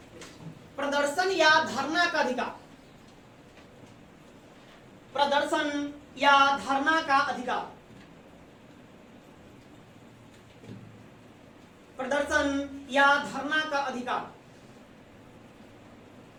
प्रदर्शन या धरना का अधिकार। प्रदर्शन या धरना का अधिकार, प्रदर्शन या धरना का अधिकार।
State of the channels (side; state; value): both; identical; correlation 1.00